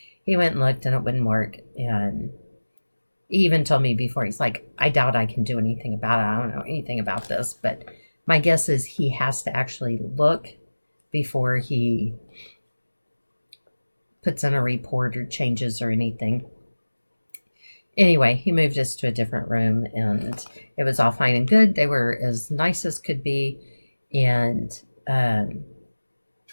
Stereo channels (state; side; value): inverted; both; correlation -1.00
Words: he went and looked and it wouldn't work. And he even told me before, he's like, I doubt I can do anything about it. I don't know anything about this. But my guess is he has to actually look before he puts in a report or changes or anything. Anyway, he moved us to a different room and it was all fine and good. They were as nice as could be. And